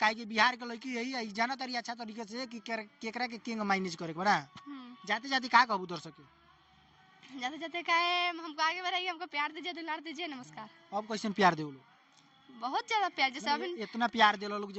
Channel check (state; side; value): identical; both; correlation 1.00